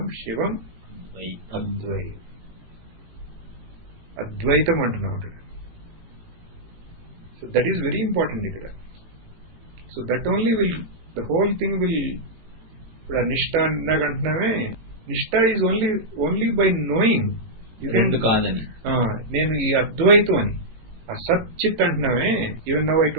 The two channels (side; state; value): left; late; 18 ms